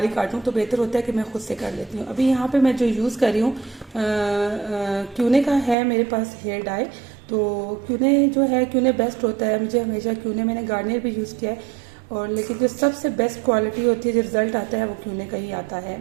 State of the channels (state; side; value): drops out; left; at 5.8 s